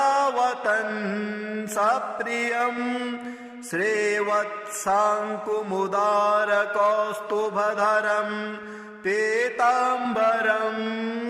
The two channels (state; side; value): identical; both; correlation 1.00